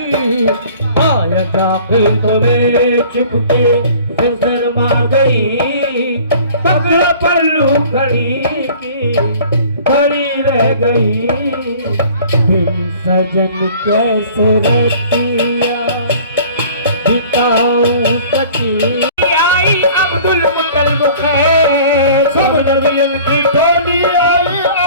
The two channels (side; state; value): both; inverted; correlation -0.48